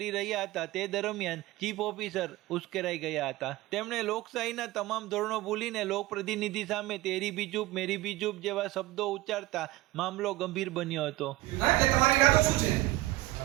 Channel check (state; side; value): quieter; left; 17.8 dB